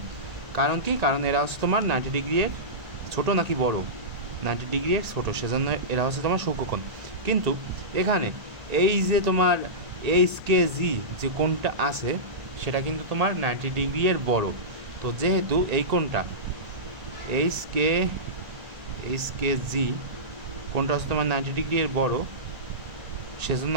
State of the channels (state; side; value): late; left; 1.8 ms